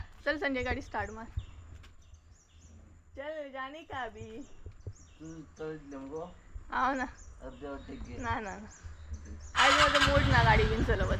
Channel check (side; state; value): both; identical; correlation 1.00